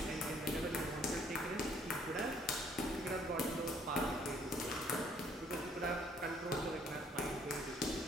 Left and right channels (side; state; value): both; normal; correlation 0.63